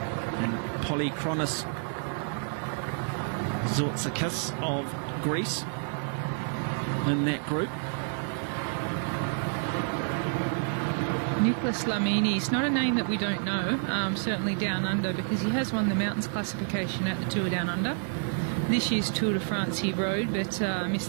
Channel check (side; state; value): left; silent; 58 dB below the other